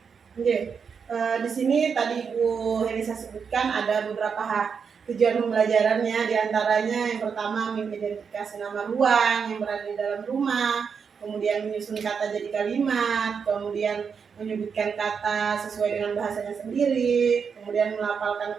Di sini tadi Ibu Helisa sebutkan ada beberapa tujuan pembelajarannya, diantaranya yang pertama mengidentifikasi nama ruang yang berada di dalam rumah, kemudian menyusun kata jadi kalimat, kemudian menyebutkan kata sesuai dengan bahasanya sendiri, kemudian melafalkan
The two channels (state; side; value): quieter; left; 6.3 dB